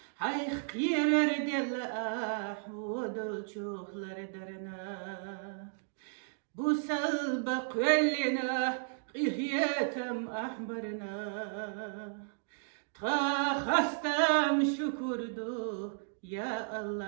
Hay kıyarar della vodul çoğlar darına Bu salba kwellina qihyatam ahbarına Ta hastam şukurdu ya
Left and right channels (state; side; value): silent; left; digital silence